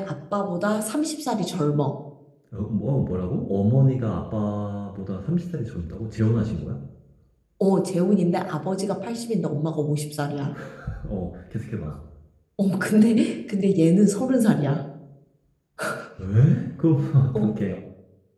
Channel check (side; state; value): both; identical; correlation 1.00